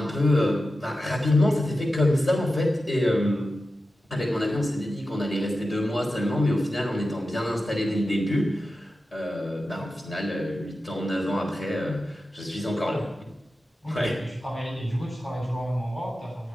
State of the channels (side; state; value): both; normal; correlation 0.92